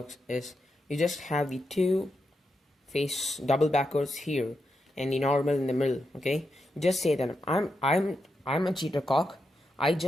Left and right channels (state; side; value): normal; both; correlation 0.85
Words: is you just have the 2 face double backers here and the normal in the middle, okay? Just say that I'm a cheater cock. I